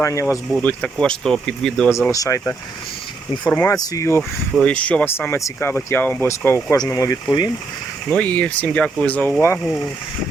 у вас будуть. Також то під відео залишайте інформацію, що вас саме цікавить, я вам обов'язково кожному відповім. І всім дякую за увагу.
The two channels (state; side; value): quieter; left; 3.8 dB